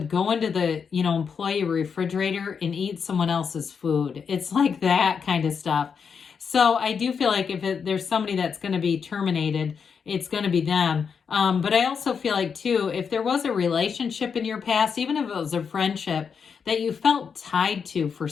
go into the, employee refrigerator and eat someone else's food. It's like that kind of stuff. So I do feel like if there's somebody that's going to be terminated, it's going to be them. But I also feel like, too, if there was a relationship in your past, even if it was a friendship that you felt tied to for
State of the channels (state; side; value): quieter; right; 6.3 dB